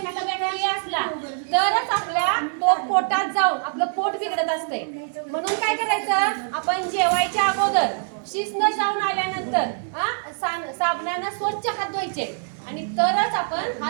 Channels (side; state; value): left; silent; digital silence